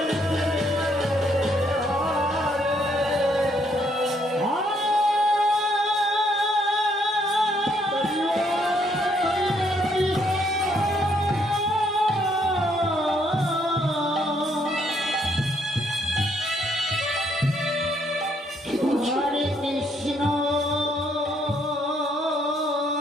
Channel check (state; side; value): normal; both; correlation 0.70